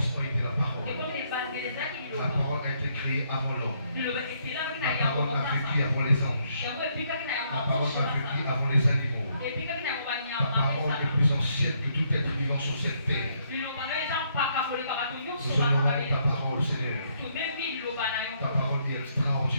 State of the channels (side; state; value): both; inverted; correlation -0.72